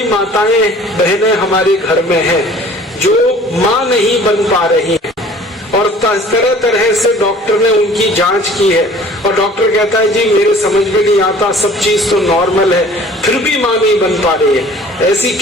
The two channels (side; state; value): both; normal; correlation 0.49